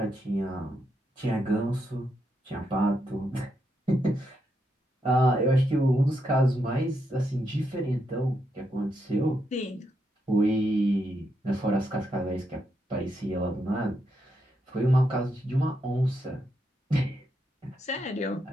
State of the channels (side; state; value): both; normal; correlation 0.81